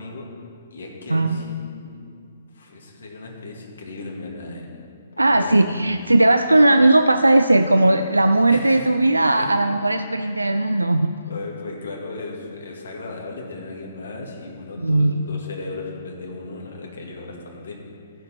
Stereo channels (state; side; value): inverted; both; correlation -0.92